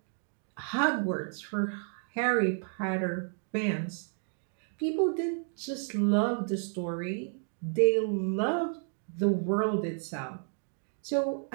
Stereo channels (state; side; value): silent; left; 57 dB below the other